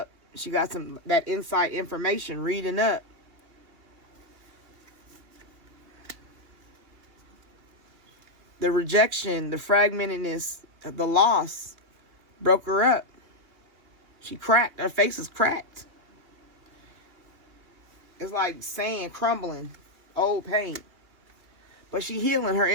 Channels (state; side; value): late; left; 2.9 ms